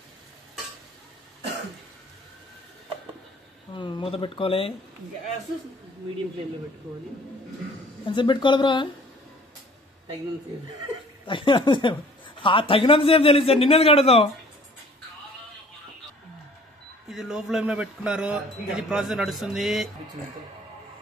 మూత పెట్టుకోవాలి. గ్యాస్ మీడియం ఫ్లేమ్లో పెట్టుకోవాలి. ఎంతసేపు పెట్టుకోవాలి బ్రో? తగినంతసేపు. తగినంతసేపు తెలుసు సార్, నిన్నది కడతాం. ఇది లో ఫ్లేమ్ లో పెట్టుకున్నారు. ఇది ప్రాసెస్ నడుస్తుంది.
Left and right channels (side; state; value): both; normal; correlation 0.52